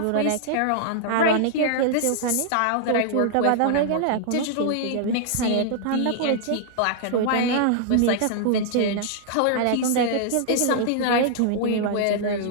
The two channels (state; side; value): different; both; correlation -0.01